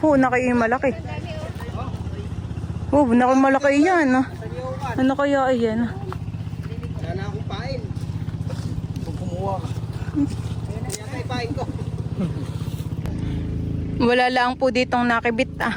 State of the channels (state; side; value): identical; both; correlation 1.00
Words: Naki yung malaki. Naki malaki yan. Ano kaya yan? Sana akong pain. Kung kumuha ka. Kaya kay pain ko. Wala lang po ditong nakibit